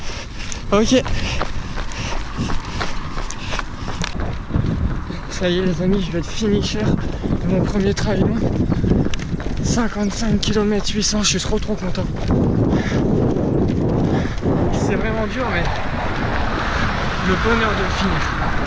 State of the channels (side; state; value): both; identical; correlation 1.00